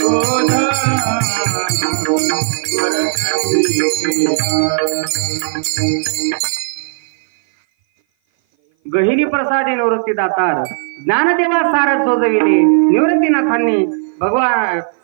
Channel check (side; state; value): left; silent; 58 dB below the other